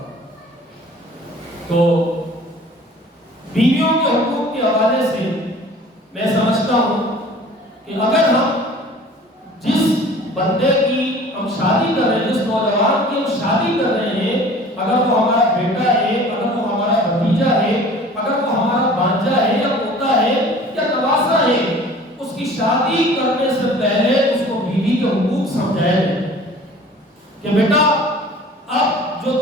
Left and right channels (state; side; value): normal; both; correlation 0.46